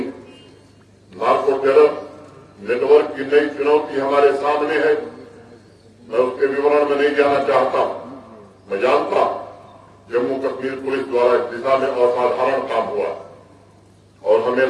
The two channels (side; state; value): both; identical; correlation 1.00